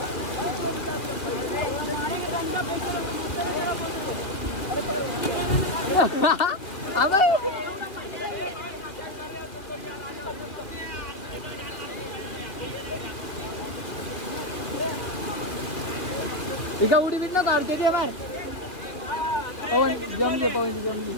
एका उडी बिट न काढते ते मार.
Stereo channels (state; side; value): late; right; 2.6 ms